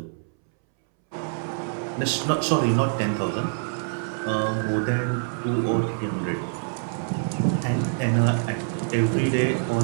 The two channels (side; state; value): left; silent; 62 dB below the other